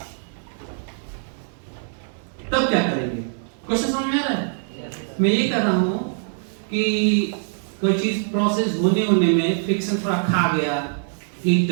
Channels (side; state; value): left; silent; digital silence